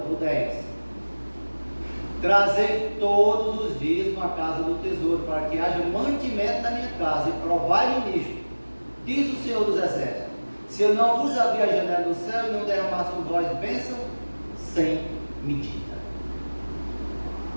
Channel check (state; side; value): inverted; both; correlation -1.00